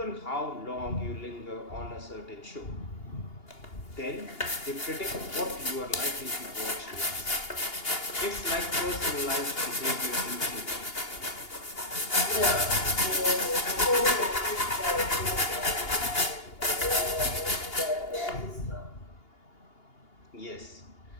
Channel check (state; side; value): late; right; 2.8 ms